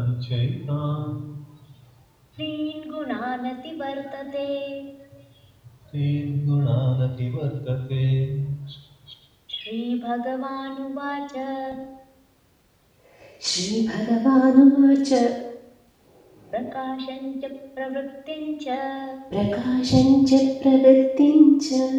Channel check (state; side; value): identical; both; correlation 1.00